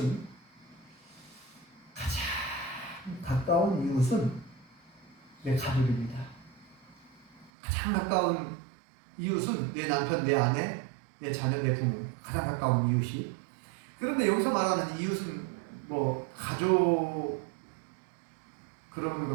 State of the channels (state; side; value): drops out; left; at 7.5 s